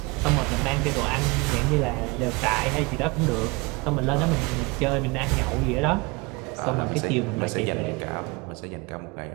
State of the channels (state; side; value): quieter; left; 26.5 dB